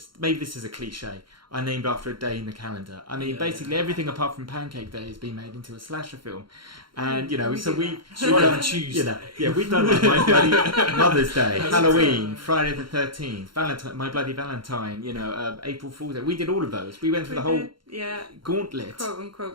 Maybe this is a cliche. I named after a day in the calendar. I mean, basically everything apart from Pancake Day has been made into a slasher film, and you know, we've done Tuesday. You know, we've done like My Bloody Mother's Day, Halloween, Friday the 13th, Valentine, My Bloody Valentine. You know, April Fool's Day. We did all of those. We went through the whole gauntlet, quote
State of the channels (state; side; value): late; left; 0.73 ms